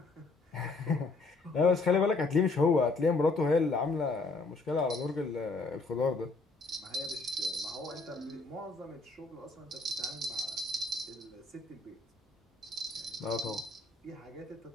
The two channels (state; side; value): quieter; right; 3.5 dB